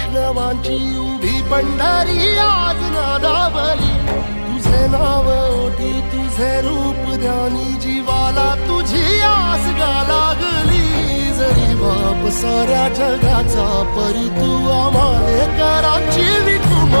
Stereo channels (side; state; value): both; inverted; correlation -1.00